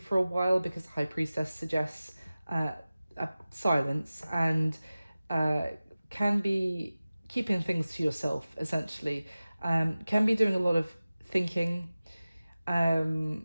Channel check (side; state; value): both; inverted; correlation -0.97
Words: a while, because the High Priestess suggests silence and can be keeping things to yourself, essentially. Can be doing a lot of thinking.